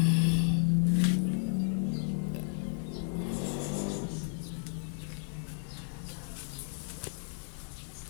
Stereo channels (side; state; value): right; silent; 56 dB below the other